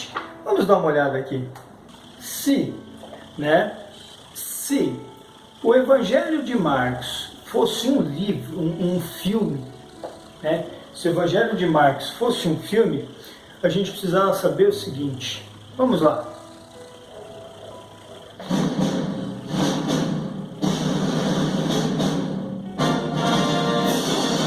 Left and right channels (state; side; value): identical; both; correlation 1.00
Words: Vamos dar uma olhada aqui. Se o Evangelho de Marcos fosse um livro, um filme, né? Se o Evangelho de Marcos fosse um filme, a gente precisava saber o seguinte. Vamos lá.